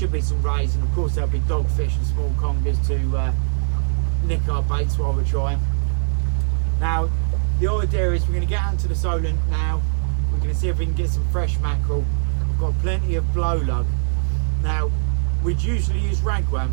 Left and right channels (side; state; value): left; silent; digital silence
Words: be some rays, and of course there'll be dogfish and small congers to nick our baits while we're trying. Now the idea is we're going to get out into the Solent now. We're going to see if we can get some fresh mackerel. We've got plenty of blow lug. Now we'd usually use